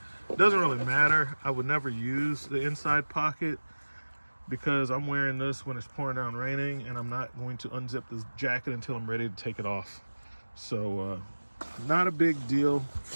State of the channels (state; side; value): inverted; both; correlation -1.00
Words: It doesn't really matter. I would never use the inside pocket because I'm wearing this when it's pouring down raining, and I'm not going to unzip this jacket until I'm ready to take it off. So not a big deal